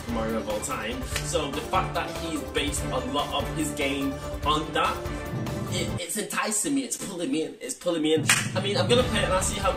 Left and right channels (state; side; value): identical; both; correlation 1.00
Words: Mario of all time, so the fact that he's based a lot of his game on that, it's enticing me, it's pulling me in, I mean, I'm gonna play it and I'll see how